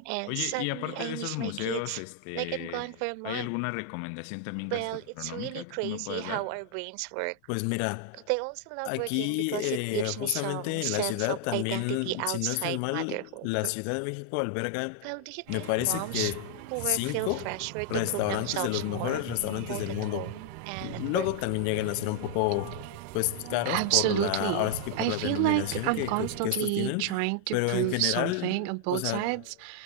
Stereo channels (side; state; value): both; different; correlation 0.00